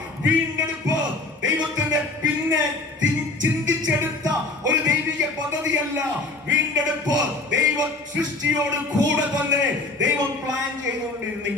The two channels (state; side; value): quieter; right; 3.1 dB